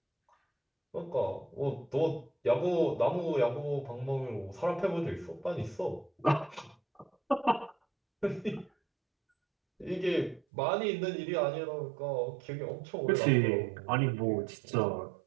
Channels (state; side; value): drops out; left; at 10.4 s